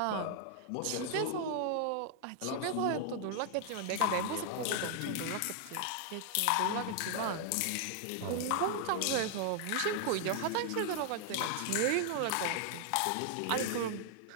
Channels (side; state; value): both; different; correlation 0.00